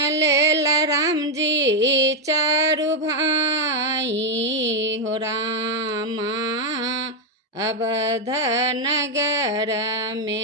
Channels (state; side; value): normal; both; correlation 0.03